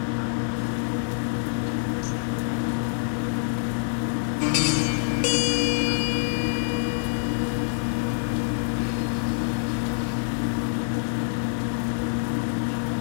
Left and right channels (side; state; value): right; silent; digital silence